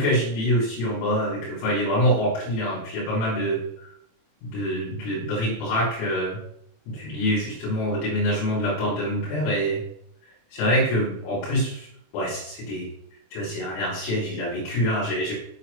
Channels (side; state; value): right; late; 27 ms